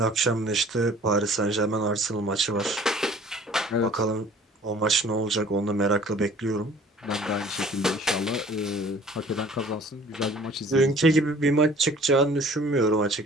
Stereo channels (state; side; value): normal; both; correlation 0.51